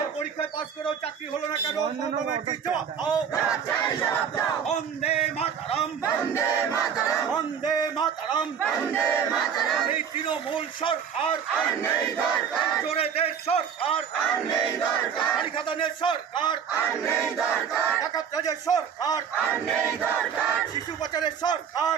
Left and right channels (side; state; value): left; quieter; 7.6 dB